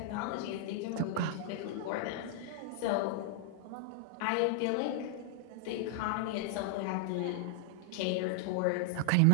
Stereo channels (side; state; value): both; different; correlation 0.00